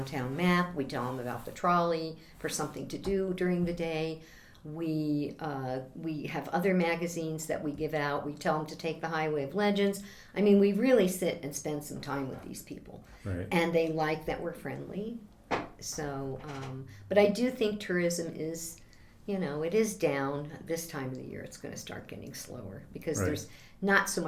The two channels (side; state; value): both; identical; correlation 1.00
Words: map. We tell them about the trolley for something to do during the day. We have other magazines that we give out. We tell them to take the Highway of Legends. I mean, we really sit and spend some time with these people. Right. And they like that we're friendly. So, but I do think tourism is, it is down this time of the year. It's going to start getting slower because there's not so